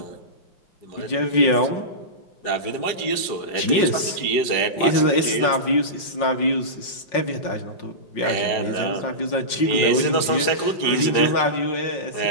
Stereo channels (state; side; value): late; right; 5.5 ms